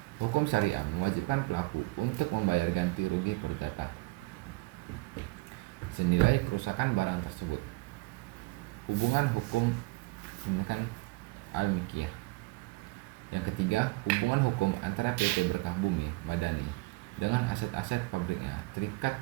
hukum syariah mewajibkan pelaku untuk membayar ganti rugi perdata senilai kerusakan barang tersebut. Hubungan hukum al-Mikiyah. Yang ketiga, hubungan hukum antara PT Berkah Bumi Madani dengan aset-aset pabriknya terikat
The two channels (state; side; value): quieter; left; 24.3 dB